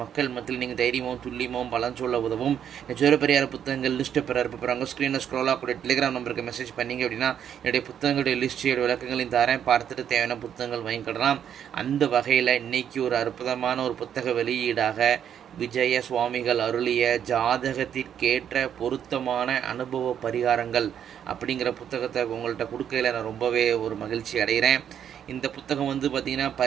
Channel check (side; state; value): left; quieter; 9.1 dB